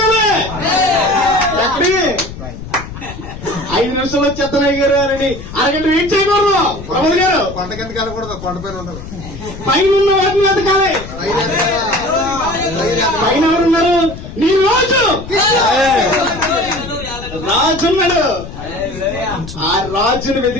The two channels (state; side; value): noise; left; rumble, 12 dB below the sound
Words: ఎక్కడి 5 నిమిషాలు వచ్చేత్తనాయి గారు అని అరగంట వెయిట్ చేయకూడదు. ప్రమోద్ గారు కొండ కింద కలకూడదు, కొండపైన ఉండదు. పైనున్న వాటిని ఎదగాలి. పైన ఎవరున్నారు? నీ రాజున్నాడు. ఆ రాజును